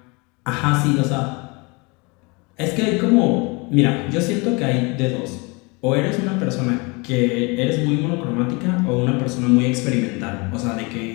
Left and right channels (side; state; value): right; quieter; 28.4 dB